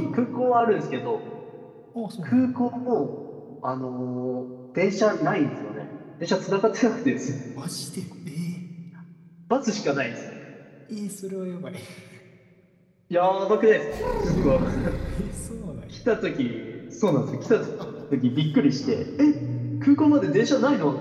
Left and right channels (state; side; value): identical; both; correlation 1.00